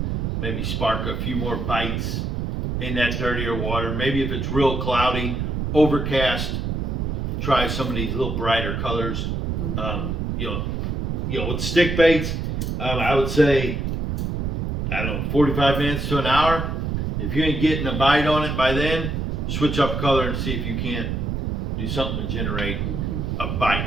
maybe spark a few more bites in that dirtier water. Maybe if it's real cloudy, overcast, try some of these little brighter colors. You know, with stick baits, I would say, I don't know, 45 minutes to an hour. If you ain't getting a bite on it by then, switch up color and see if you can't do something to generate a bite.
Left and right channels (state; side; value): noise; right; rumble, 1 dB below the sound